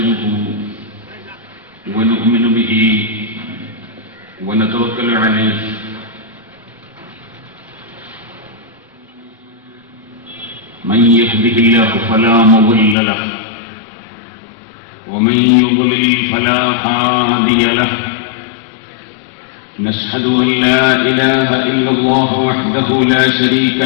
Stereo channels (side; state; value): right; drops out; at 13.0 s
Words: ونؤمن به ونتوكل عليه من يهده الله فلا مضل له ومن يضلل فلا هادي له نشهد أن لا إله إلا الله وحده لا شريك